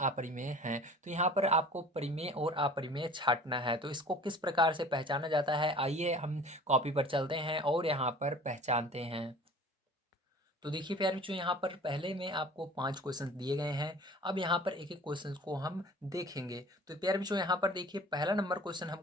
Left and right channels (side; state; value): both; normal; correlation 0.45